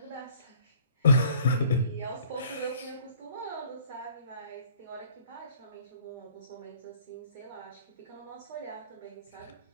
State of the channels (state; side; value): inverted; both; correlation -0.54